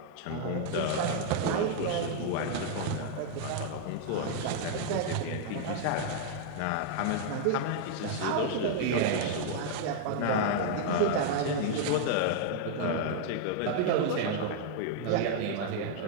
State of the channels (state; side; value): different; both; correlation -0.01